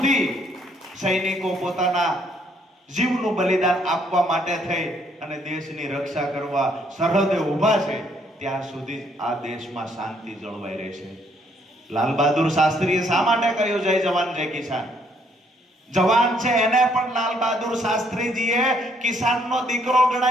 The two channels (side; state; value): both; normal; correlation 0.68